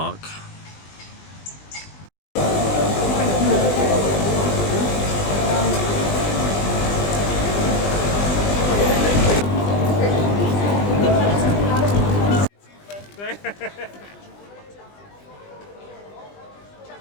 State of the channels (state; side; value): late; right; 20 ms